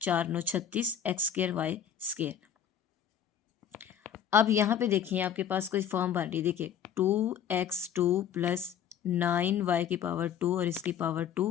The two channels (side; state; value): right; quieter; 8.8 dB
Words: 4 9 36, एक्स स्क्र वाई स्क्र। अब यहाँ पे देखिए आपके पास कोई फॉर्म बन रही है, देखिए 2x2 प्लस 9y की पावर 2 और इसकी पावर 2